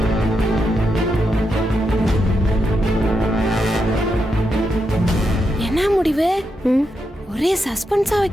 என்ன முடிவு? ஒரே சஸ்பென்ஸா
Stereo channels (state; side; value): normal; both; correlation 0.84